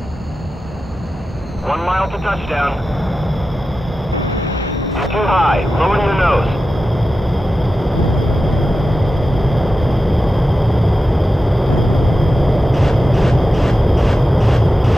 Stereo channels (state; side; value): normal; both; correlation 0.92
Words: 1 mile to touchdown. You're too high. Lower your nose.